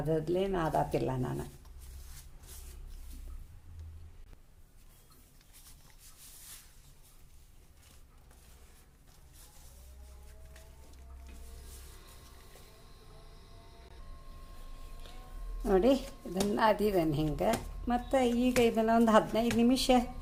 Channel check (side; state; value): both; identical; correlation 1.00